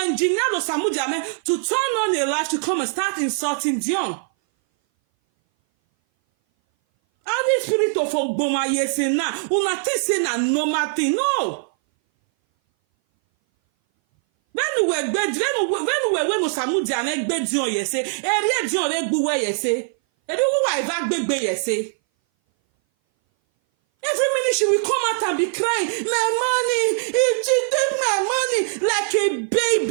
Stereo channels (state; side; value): silent; left; 59 dB below the other